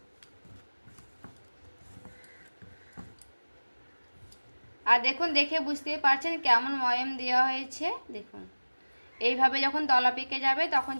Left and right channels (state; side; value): inverted; both; correlation -1.00